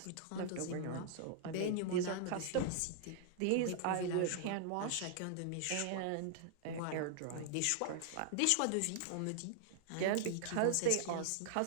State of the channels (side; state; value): both; different; correlation -0.01